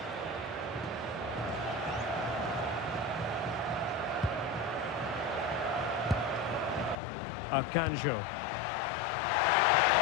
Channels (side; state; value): right; drops out; at 7.0 s